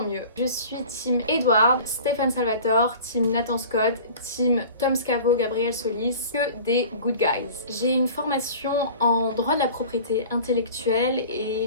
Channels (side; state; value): both; inverted; correlation -0.42